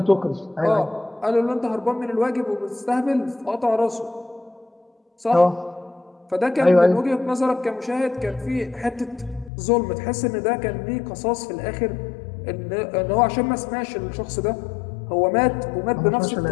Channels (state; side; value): drops out; right; at 9.5 s